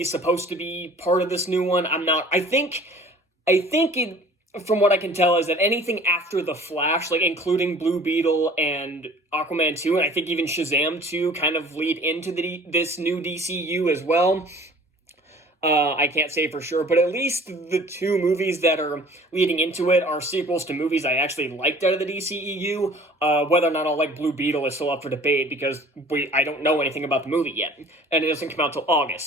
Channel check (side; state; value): both; normal; correlation 0.48